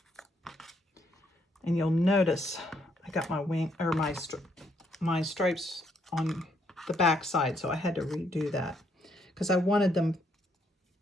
And you'll notice I got my wing or my stripes on the back side, so I had to redo that because I wanted them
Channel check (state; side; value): normal; both; correlation 0.72